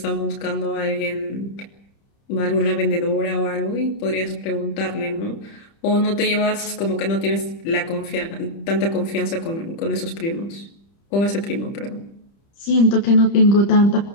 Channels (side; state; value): right; late; 30 ms